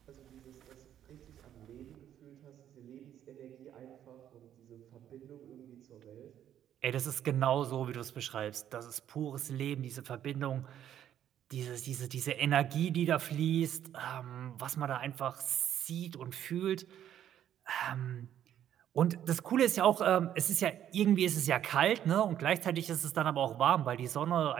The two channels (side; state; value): left; quieter; 10.6 dB